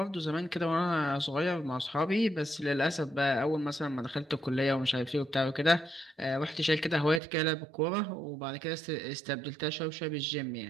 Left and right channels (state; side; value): drops out; left; at 7.2 s